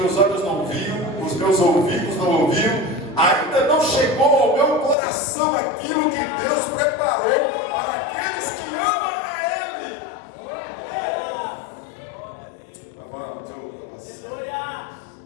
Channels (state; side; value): drops out; right; at 5.0 s